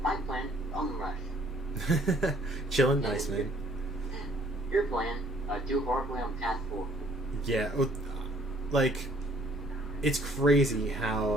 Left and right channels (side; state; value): both; normal; correlation 0.60